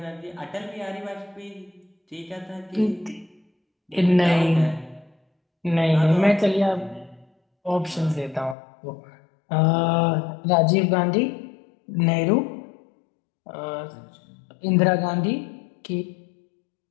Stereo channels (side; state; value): right; drops out; at 8.6 s